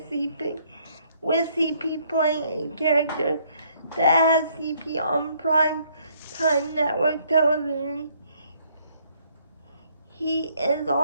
CP playing a character that has CP on prime time network television. He is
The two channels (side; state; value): both; inverted; correlation -0.66